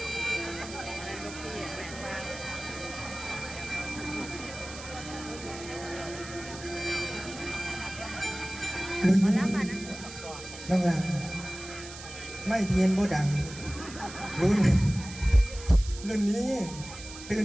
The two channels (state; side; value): noise; right; hiss, 13 dB below the sound